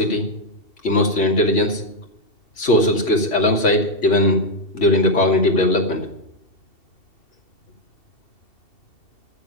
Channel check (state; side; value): late; right; 2.7 ms